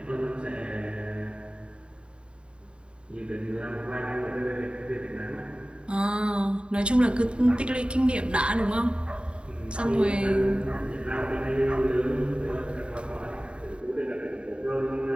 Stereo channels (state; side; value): late; left; 0.054 ms